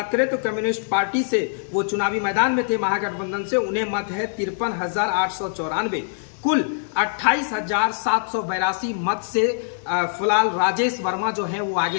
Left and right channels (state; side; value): silent; right; digital silence